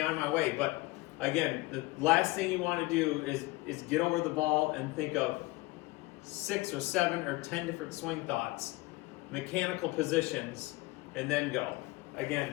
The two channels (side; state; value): right; quieter; 21.8 dB